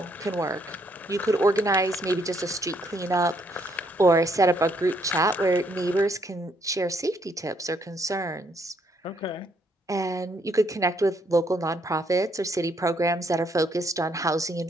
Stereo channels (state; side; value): normal; both; correlation 0.71